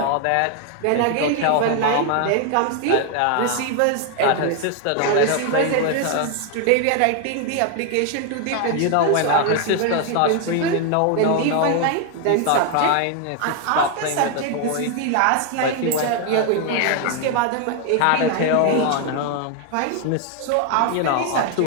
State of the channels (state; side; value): different; both; correlation 0.01